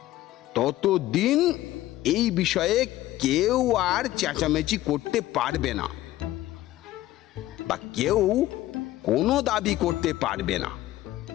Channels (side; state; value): right; quieter; 15.4 dB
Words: ততদিন এই বিষয়ে কেউ আর চেঁচামেচি করতে পারবে না বা কেউ কোনো দাবি করতে পারবে না।